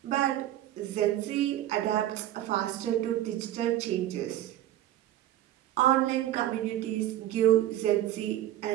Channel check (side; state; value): left; quieter; 13.1 dB